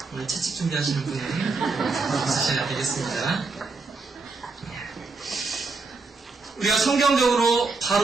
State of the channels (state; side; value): quieter; left; 4.0 dB